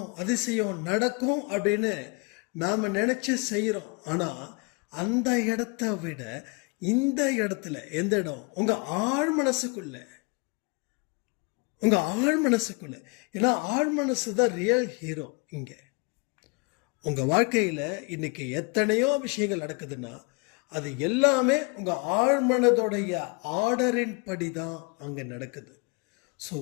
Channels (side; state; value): right; quieter; 30.1 dB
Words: அதிசயம் நடக்கும் அப்படின்னு நாம் நினச்சி செய்கிறோம். ஆனால் அந்த இடத்த விட இந்த இடத்துல எந்த இடம்? உங்கள் ஆழ் மனசுக்குள்ளே, உங்கள் ஆழ் மனசுக்குள்ளே. ஏன்னா ஆழ் மனசு தான் ரியல் ஹீரோ. இங்கே உங்கள் வாழ்க்கையில் இன்றைக்கி எத்தனையோ விஷயங்கள் நடக்குதுன்னா அது எல்லாமே உங்கள் ஆழ்மனதோடைய ஆர்டரின் படி தான் அங்கே நடக்குது. ஸோ